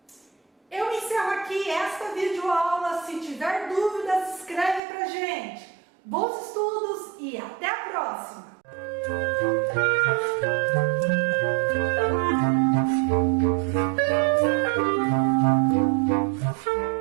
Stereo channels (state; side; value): drops out; left; at 4.8 s